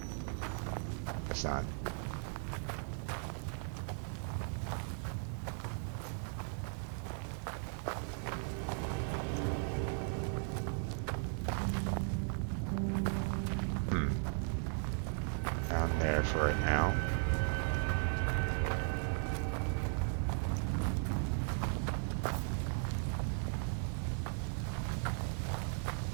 It's not. Down there for right now.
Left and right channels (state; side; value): silent; left; 53 dB below the other